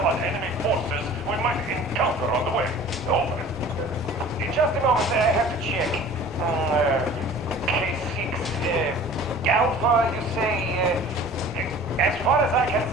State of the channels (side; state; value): both; normal; correlation 0.45